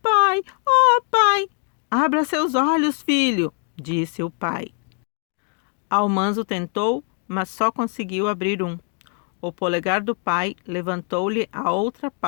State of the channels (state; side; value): quieter; right; 37.3 dB